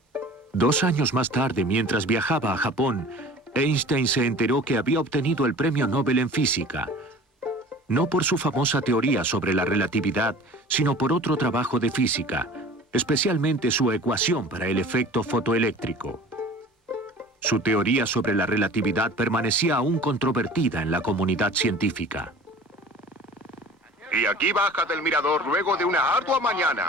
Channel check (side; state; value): both; normal; correlation 0.43